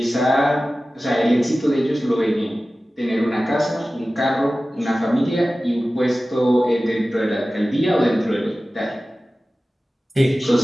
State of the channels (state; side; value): normal; both; correlation 0.96